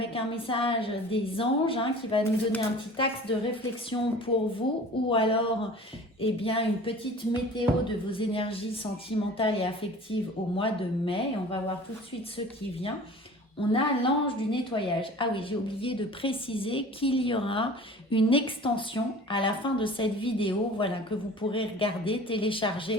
un message des anges qui va nous donner un petit axe de réflexion pour vous ou alors une petite météo de vos énergies sentimentales et affectives au mois de mai. Et on va voir tout de suite ce qui vient. On a l'ange du nettoyage. Ah oui, j'ai oublié de préciser qu'il y aura une extension à la fin de cette vidéo, voilà, que vous pourrez regarder,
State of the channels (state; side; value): normal; both; correlation 0.43